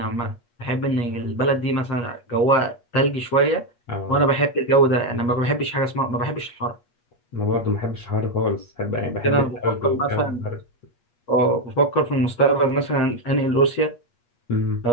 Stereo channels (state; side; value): late; right; 8.4 ms